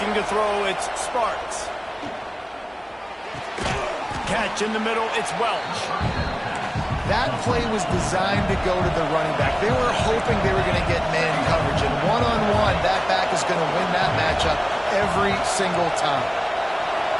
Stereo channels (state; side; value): identical; both; correlation 1.00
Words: to throw, it's Sparks. Catch in the middle, it's Welch. That play was designed to go to the running back. They were hoping they were going to get man coverage, and one-on-one, that back is going to win that matchup every single time.